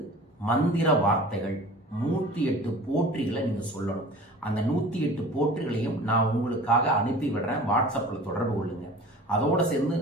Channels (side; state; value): both; normal; correlation 0.42